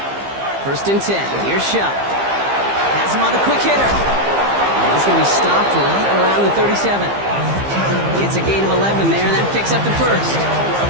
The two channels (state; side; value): late; left; 15 ms